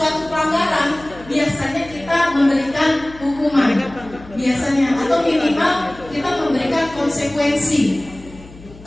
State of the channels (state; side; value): noise; left; hum, 20 dB below the sound